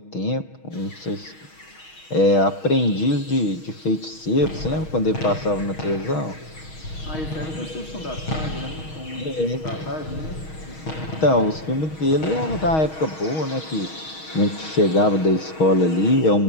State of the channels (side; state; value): right; late; 6.3 ms